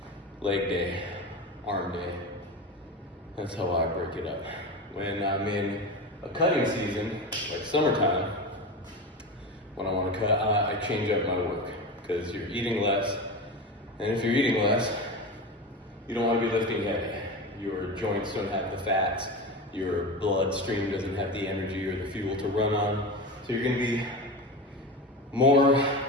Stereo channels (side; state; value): both; normal; correlation 0.25